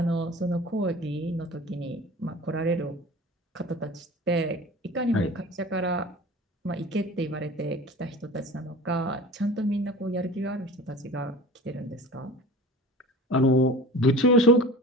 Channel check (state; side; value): normal; both; correlation 0.39